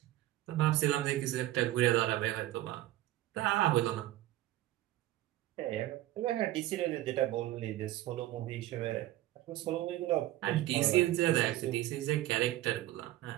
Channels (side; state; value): left; quieter; 15.1 dB